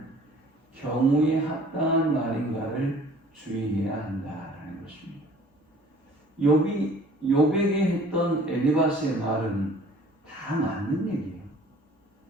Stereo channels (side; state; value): both; normal; correlation 0.51